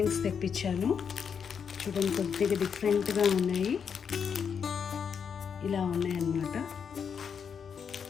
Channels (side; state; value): right; quieter; 6.9 dB